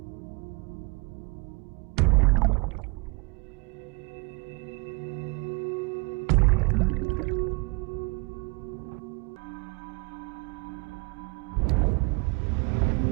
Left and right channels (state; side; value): quieter; left; 29.0 dB